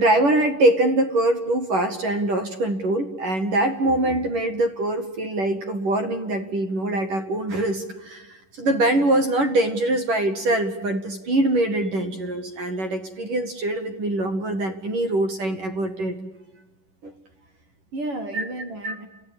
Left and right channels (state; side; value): late; left; 11 ms